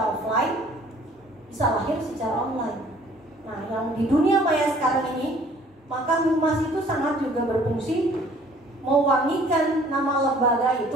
offline, bisa lahir secara online. Nah, yang di dunia maya sekarang ini, maka humas itu sangat juga berfungsi mewangikan nama lembaga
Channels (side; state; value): both; normal; correlation 0.55